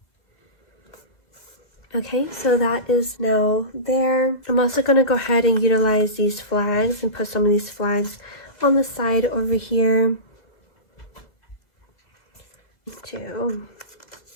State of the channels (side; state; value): right; late; 2.1 ms